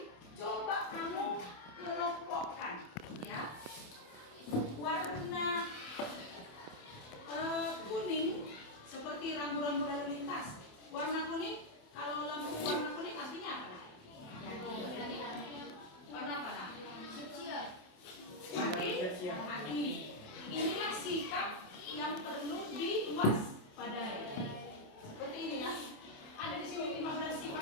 coba kamu kelompokkan ya, warna kuning seperti rambu-rambu lalu lintas. Warna kuning, kalau lampu warna kuning artinya apa? Warna apa? Hati. Inilah sikap yang perlu diwaspadai. Seperti ini ya. Ada di sini 15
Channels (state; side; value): late; right; 27 ms